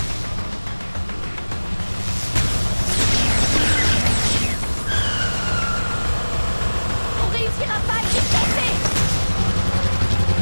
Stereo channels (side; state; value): both; inverted; correlation -1.00